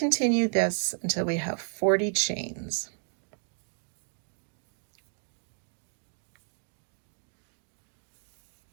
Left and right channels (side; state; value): left; silent; 56 dB below the other